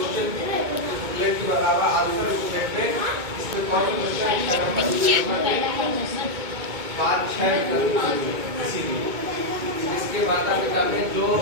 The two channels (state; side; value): late; left; 2.2 ms